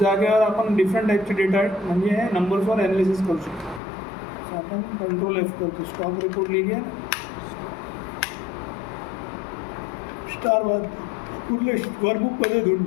आपण डिफरंट टाईपचे डेटा म्हणजे नंबर्सवर ॲनालिसिस करू शकतो. तर आपण कंट्रोल एफ करतो. स्टॉक रिपोर्ट लिहिली आहे ना. स्टार कुठले वर्कबुकमध्ये धुंड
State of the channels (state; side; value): drops out; right; at 3.8 s